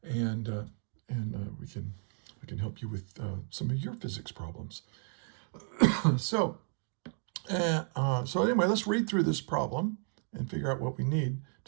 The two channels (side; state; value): left; silent; 56 dB below the other